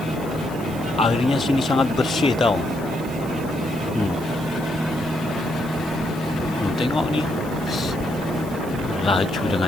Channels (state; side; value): noise; right; hiss, 19 dB below the sound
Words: airnya sini sangat bersih tau. Tengok nih, laju